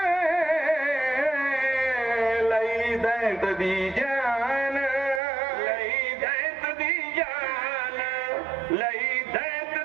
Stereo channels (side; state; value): left; drops out; at 5.2 s